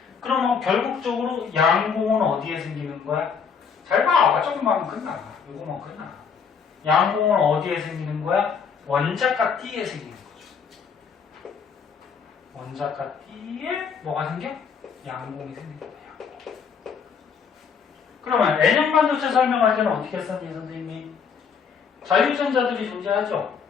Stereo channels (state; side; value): quieter; right; 6.4 dB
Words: 그러면 결국적으로 양공은 어디에 생기는 거야? 잘 봐. 조금만 끝나. 이거만 끝나. 양공은 어디에 생기는 거야? 원자가 T에 생기는 거죠. 원자가 T에 뭐가 생겨? 양공이 생깁니다. 양공. 그러면 N형 반도체 설명할 때는 어떻게 했었니 선생님이? 자유전자들이 존재하죠.